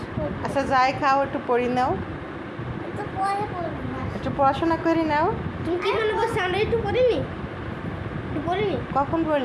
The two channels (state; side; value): identical; both; correlation 1.00